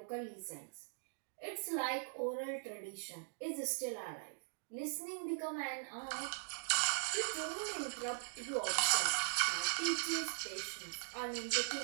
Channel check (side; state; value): left; silent; digital silence